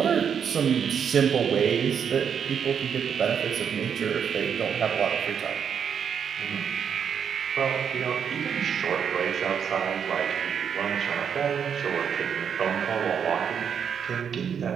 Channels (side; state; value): left; quieter; 7.5 dB